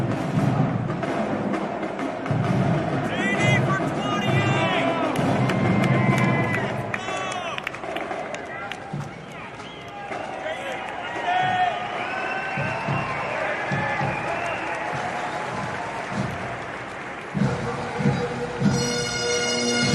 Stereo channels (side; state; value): both; identical; correlation 1.00